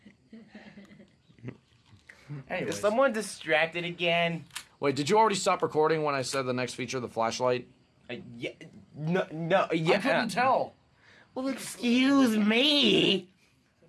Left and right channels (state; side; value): identical; both; correlation 1.00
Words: Anyways. Is someone distracted again? Wait, did you already stop recording when I said the next feature, the flashlight? Yeah, yeah. I couldn't tell. Well, excuse me.